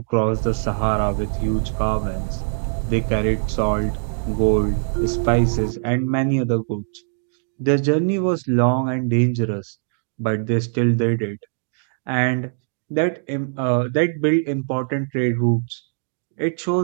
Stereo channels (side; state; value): left; silent; digital silence